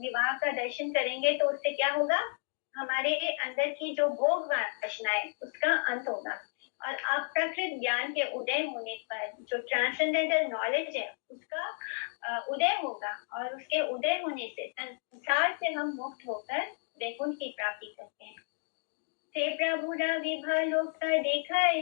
का दर्शन करेंगे, तो उससे क्या होगा, हमारे अंदर की जो भोग वासना है उसका अंत होगा और अप्राकृत ज्ञान के उदय होने पर जो ट्रांसेंडेंटल नॉलेज है उसका उदय होगा और उसके उदय होने से संसार से हम मुक्त होकर वैकुंठ की प्राप्ति करते हैं। ते प्रभु विभा लोक देखा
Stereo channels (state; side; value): silent; right; 56 dB below the other